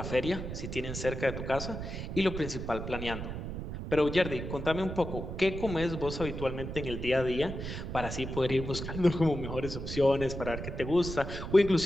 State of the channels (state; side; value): noise; right; rumble, 6 dB below the sound